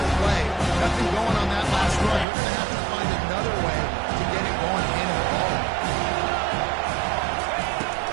play. Nothing going on that last run. You're going to have to find another way to get it going in the ball.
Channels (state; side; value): drops out; left; at 2.2 s